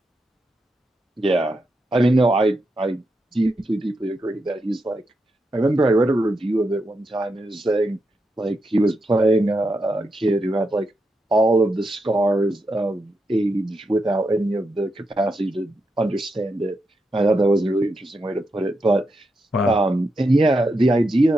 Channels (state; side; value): normal; both; correlation 0.85